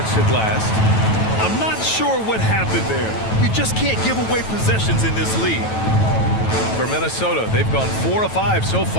it last. I'm not sure what happened there. You just can't give away possessions in this league. For Minnesota, they've gone 4 of 5 so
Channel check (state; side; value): late; right; 9.2 ms